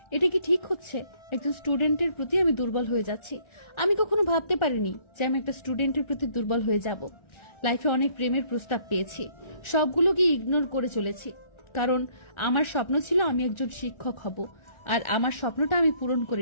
এটা কি ঠিক হচ্ছে? একজন স্টুডেন্টের প্রতি আমি দুর্বল হয়ে যাচ্ছি। আমি কখনো ভাবতে পারিনি যে আমি একটা স্টুডেন্টের প্রতি দুর্বল হয়ে যাব। লাইফে অনেক প্রেমের প্রস্তাব পেয়েছি, সবগুলোকে ইগনোর করে চলেছি, কারণ আমার স্বপ্ন ছিল আমি একজন শিক্ষক হব। আর আমার স্বপ্নটা আমি পূরণ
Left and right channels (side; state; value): right; late; 1.4 ms